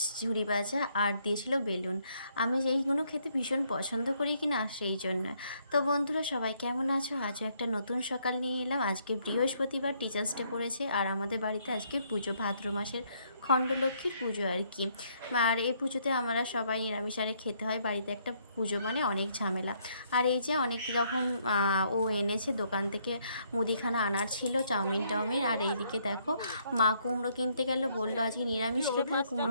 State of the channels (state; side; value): inverted; both; correlation -0.70